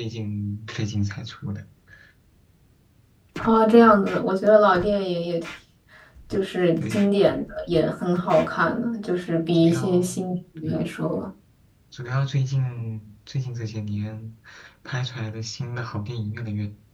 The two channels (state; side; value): identical; both; correlation 1.00